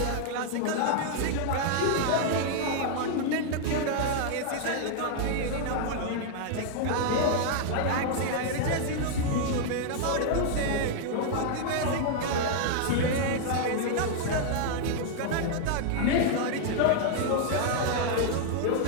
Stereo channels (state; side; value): different; both; correlation 0.00